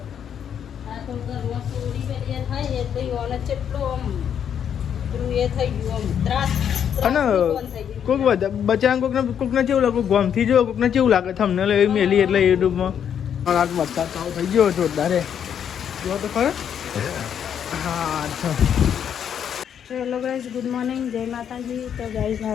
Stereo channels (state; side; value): quieter; right; 8.6 dB